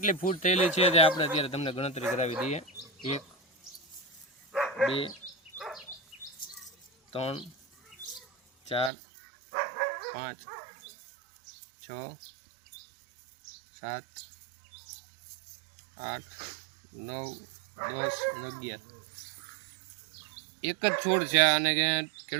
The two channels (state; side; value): drops out; left; at 8.9 s